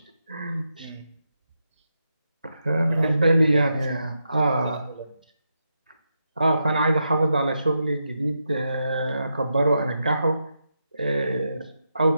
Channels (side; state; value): both; inverted; correlation -0.85